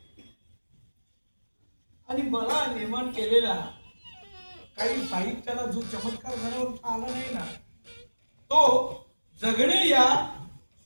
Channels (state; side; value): inverted; both; correlation -1.00